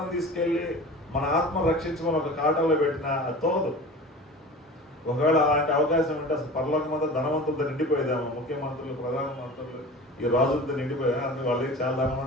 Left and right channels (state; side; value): normal; both; correlation 0.37